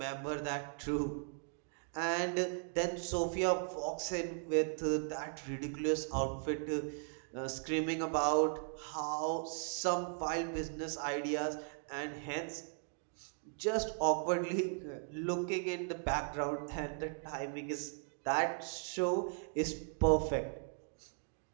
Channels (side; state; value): left; silent; 53 dB below the other